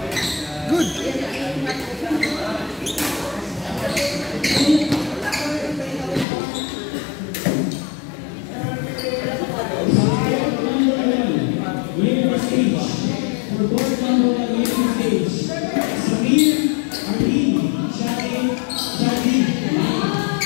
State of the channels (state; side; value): drops out; right; at 6.2 s